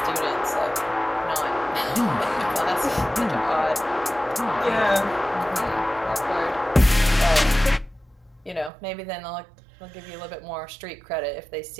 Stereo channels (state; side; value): drops out; left; at 8.7 s